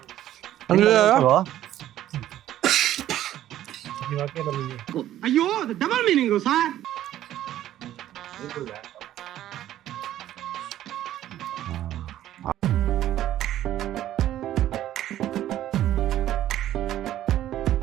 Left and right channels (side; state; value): left; quieter; 12.7 dB